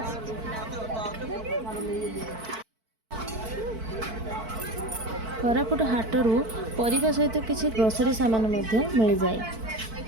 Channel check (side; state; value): left; late; 4.5 ms